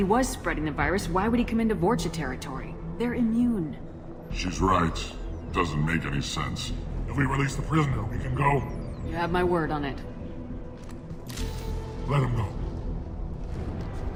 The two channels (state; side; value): identical; both; correlation 1.00